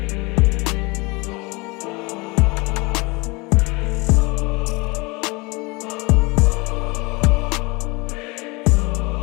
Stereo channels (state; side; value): quieter; right; 26.0 dB